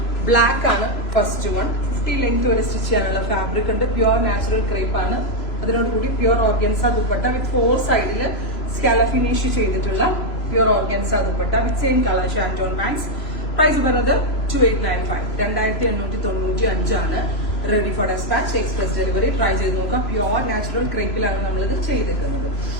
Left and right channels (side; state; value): right; late; 3.0 ms